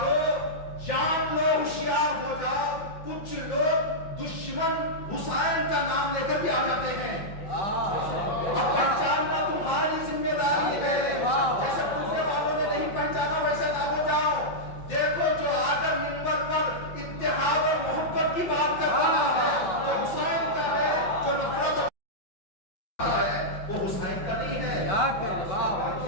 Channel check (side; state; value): right; late; 5.6 ms